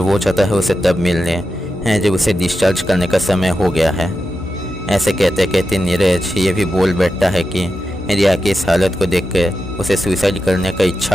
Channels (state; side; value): normal; both; correlation 0.89